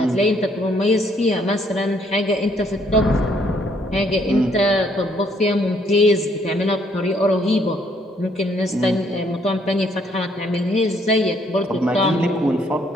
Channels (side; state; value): both; normal; correlation 0.68